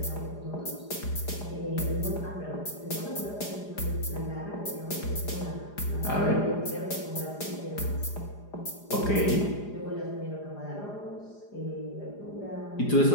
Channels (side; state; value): right; late; 4.9 ms